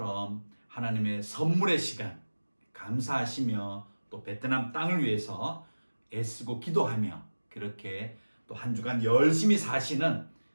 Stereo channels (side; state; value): both; inverted; correlation -1.00